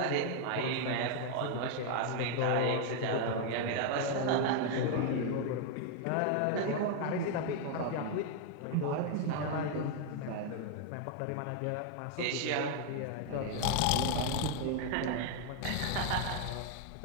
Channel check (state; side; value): different; both; correlation 0.00